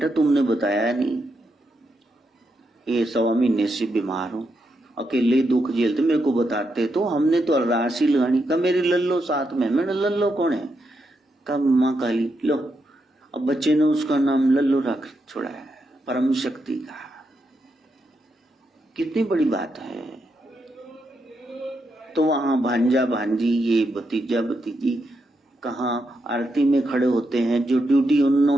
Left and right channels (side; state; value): both; normal; correlation 0.82